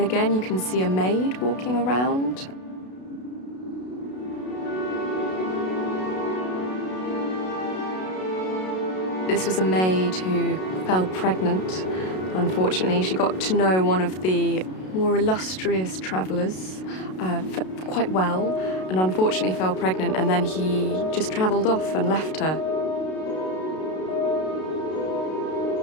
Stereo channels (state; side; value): late; right; 32 ms